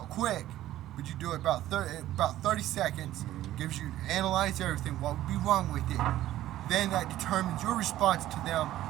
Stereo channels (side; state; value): left; quieter; 14.0 dB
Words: quick, but you do it about 30 seconds. Gives you, analyze everything, what would be wrong with it. Then that determines your response to them.